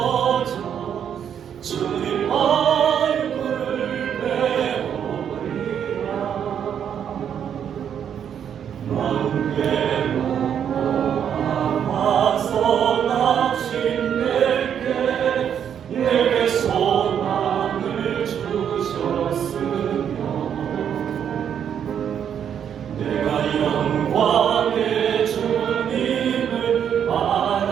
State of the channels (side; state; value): left; quieter; 8.6 dB